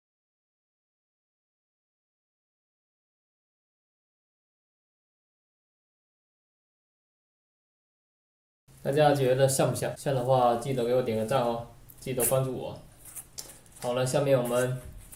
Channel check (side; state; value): both; identical; correlation 1.00